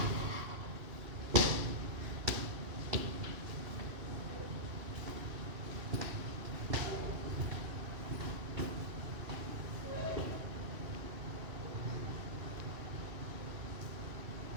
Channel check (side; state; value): left; late; 2.6 ms